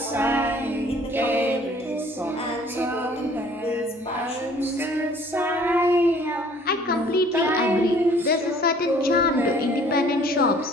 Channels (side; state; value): both; normal; correlation 0.55